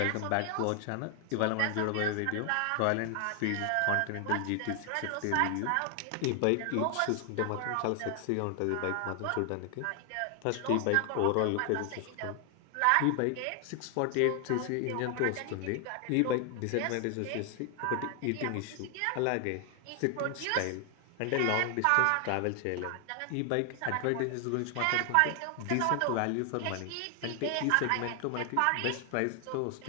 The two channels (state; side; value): different; both; correlation 0.00